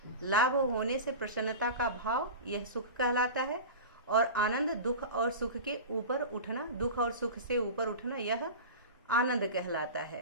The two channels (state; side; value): inverted; both; correlation -0.30